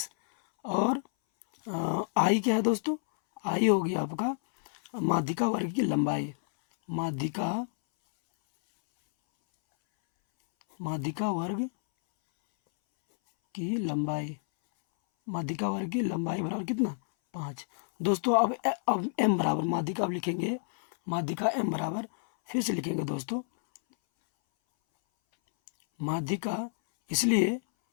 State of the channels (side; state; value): right; silent; 58 dB below the other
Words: और आई क्या है दोस्तों, आई हो गया आपका माध्यिका वर्ग की लंबाई, माध्यिका वर्ग की लंबाई, माध्यिका वर्ग की लंबाई बराबर कितना, 5 दोस्तों। अब एम बराबर माध्यिका, अब लिखेंगे माध्यिका एम बराबर, फिर से लिखेंगे दोस्तों माध्यिका, इसलिए